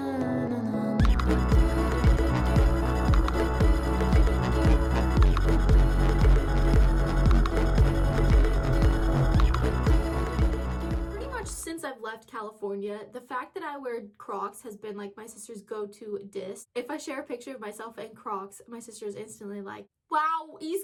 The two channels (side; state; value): both; identical; correlation 1.00